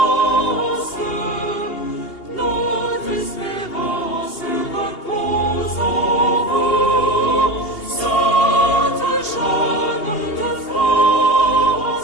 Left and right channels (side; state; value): right; late; 2.8 ms